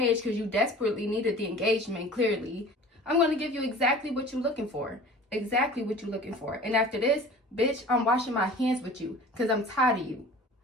because you desperately needed the engagement, clearly. I'm going to give you exactly what you're looking for. Exactly what you're looking for. And after this, bitch, I'm washing my hands with you because I'm tired of you.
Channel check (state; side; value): normal; both; correlation 0.43